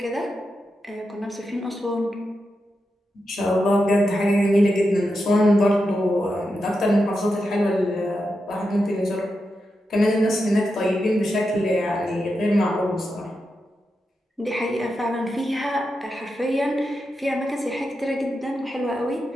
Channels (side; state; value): both; normal; correlation 0.88